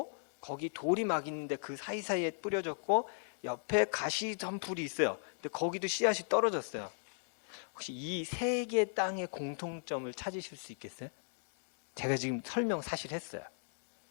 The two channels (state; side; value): silent; right; digital silence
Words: 거기 돌이 막 있는데 그 사이사이에 뿌려졌고, 옆에 가시 점풀이 있어요. 근데 거기도 씨앗이 떨어졌어요. 혹시 이 세 개의 땅의 공통점을 찾으실 수 있겠어요? 제가 지금 설명 사실 했어요.